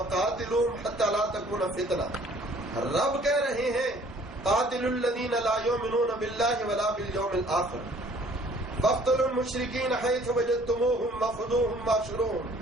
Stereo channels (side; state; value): both; normal; correlation 0.56